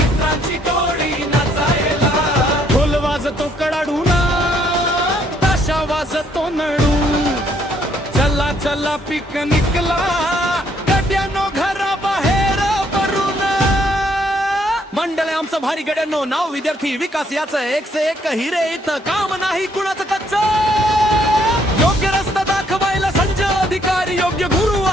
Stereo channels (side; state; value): both; normal; correlation 0.69